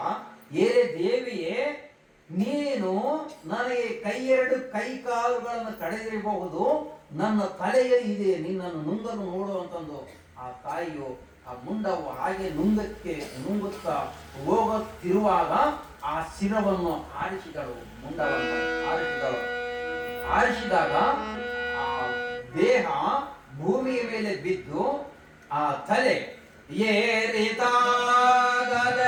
ಏ ದೇವಿಯೇ, ನೀನು ನನಗೆ 2 ಕೈ ಕಾಲುಗಳನ್ನು ಕಡಿದಿರಬಹುದು, ನನ್ನ ತಲೆಯಲ್ಲಿ ಇದೆ ನಿನ್ನನ್ನು ನುಂಗಲು ನೋಡುವಂತಂದು ಆ ತಾಯಿಯು ಆ ಮುಂಡವು ಹಾಗೆ ನುಂಗುತ್ತಾ ಹೋಗುತ್ತಿರುವಾಗ ಆ ಶಿರವನ್ನು ಆರಿಸಿದಳು. ಮುಂಡವನ್ನು ಆರಿಸಿದಾಗ ಆ ದೇಹ ಭೂಮಿಯ ಮೇಲೆ ಬಿದ್ದು ಆ ತಲೆ ಏರಿತಾಗದನಗೆ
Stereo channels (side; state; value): both; identical; correlation 1.00